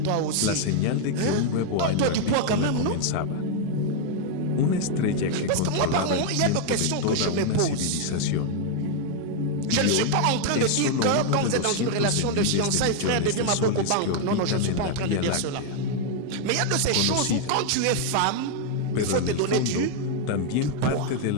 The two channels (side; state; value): both; different; correlation 0.00